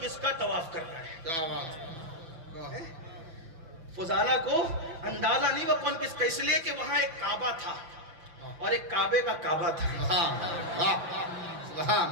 کا طواف کر رہا ہے. فضالہ کو اندازہ نہیں ہوا کون کس کا, اس لیے کہ وہاں ایک کعبہ تھا اور ایک کعبے کا کعبہ تھا.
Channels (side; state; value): left; late; 6.0 ms